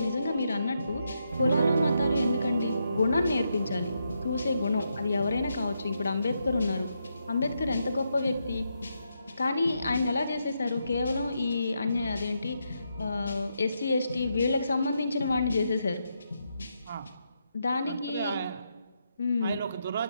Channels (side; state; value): both; inverted; correlation -0.82